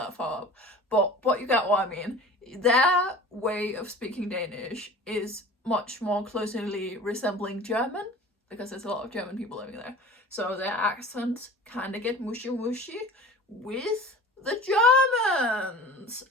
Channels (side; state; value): both; normal; correlation 0.40